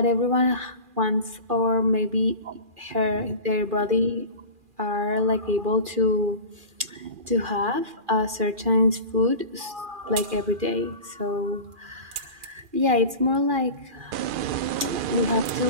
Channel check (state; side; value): late; left; 2.4 ms